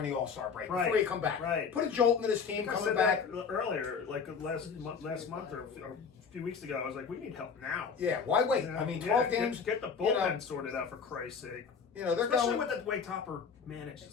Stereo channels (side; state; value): right; quieter; 5.9 dB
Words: the All-Star break before you come back. Right. Put a jolt into this team I coming said back. that earlier, like last month or a few weeks ago. I was like, we need help now. Yeah, why wait? You know? I mean, 12 games. Get the bullpen sorted out for Christ's sake. They're Especially going with the way Topper